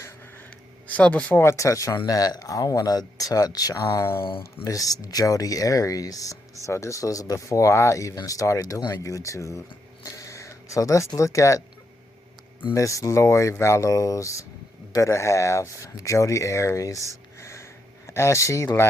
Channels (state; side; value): normal; both; correlation 0.80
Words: So before I touch on that, I want to touch on Miss Jodi Arias. So this was before I even started doing YouTube. So let's look at Miss Lori Vallow's better half, Jodi Arias, as she